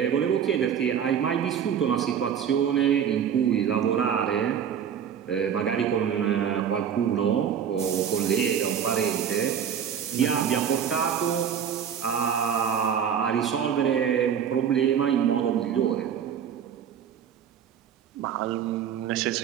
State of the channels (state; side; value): quieter; left; 8.3 dB